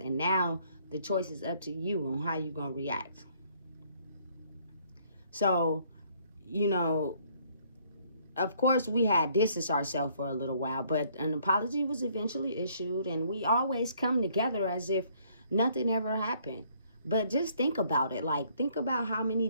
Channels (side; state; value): both; inverted; correlation -0.64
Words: now the choice is up to you on how you're going to react. So, you know, of course we had distanced ourselves for a little while, but an apology was eventually issued, and we always come together as if nothing ever happened. But just think about it. Like, think about how many